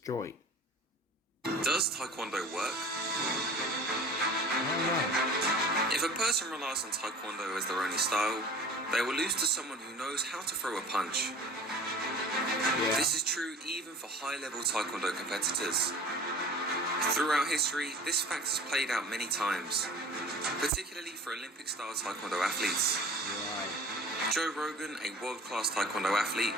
Does Taekwondo work? If a person relies on Taekwondo as their only style, they will lose to someone who knows how to throw a punch. This is true even for high-level Taekwondo competitors. Throughout history, this fact has played out many times, particularly for Olympic-style Taekwondo athletes. Joe Rogan, a world-class Taekwondo athlete,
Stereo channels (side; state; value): both; normal; correlation 0.42